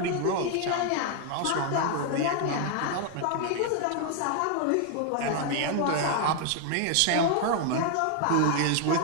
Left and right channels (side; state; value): both; different; correlation 0.00